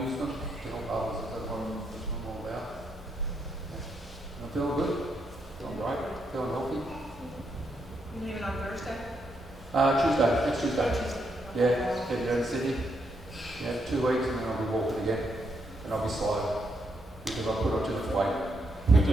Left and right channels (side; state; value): both; normal; correlation 0.79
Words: use them to help others. That's what I'm all about. Yeah. I'm feeling good, feeling great, feeling healthy. You leaving on Thursday? Tuesday, next Tuesday. Tuesday. Yeah, heading down to Sydney. Yeah, 2 weeks and then I'll be walking again. And I'll be slow because I put on too much weight. You